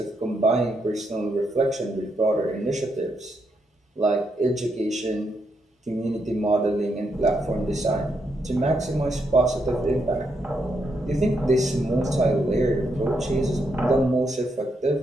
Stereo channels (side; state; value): both; normal; correlation 0.79